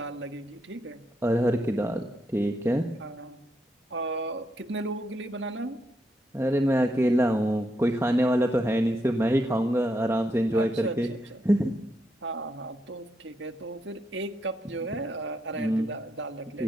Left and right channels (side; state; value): both; normal; correlation 0.80